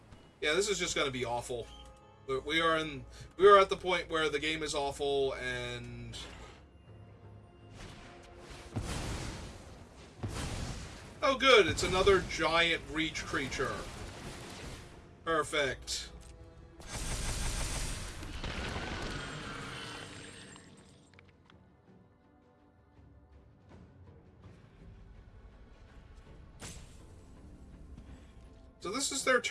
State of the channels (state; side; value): identical; both; correlation 1.00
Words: yeah, this is just going to be awful. We are at the point where the game is awful, and... oh good, it's another giant reach creature. Perfect. So this is their